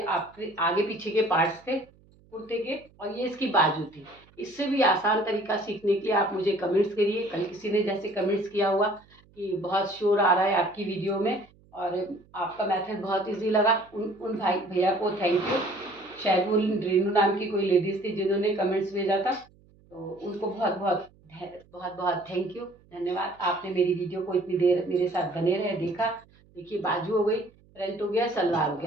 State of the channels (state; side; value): noise; right; hum, 29 dB below the sound